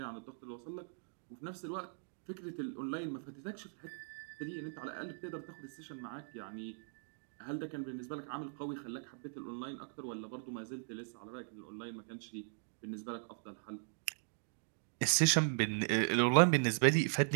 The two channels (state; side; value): silent; left; digital silence